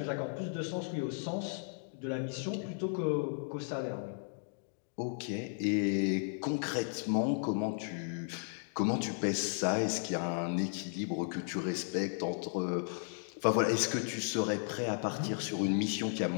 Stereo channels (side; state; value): right; silent; digital silence